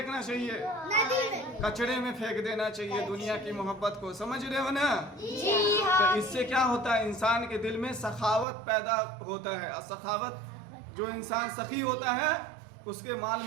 चाहिए? नदी में। कचड़े में फेंक देना चाहिए दुनिया की मोहब्बत को। समझ रहे हो ना? जी तो हाँ। इससे क्या होता है? इंसान के दिल में सखावत पैदा होता है। और सखावत, जो इंसान सखी होता है उसके माल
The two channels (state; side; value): drops out; left; at 8.5 s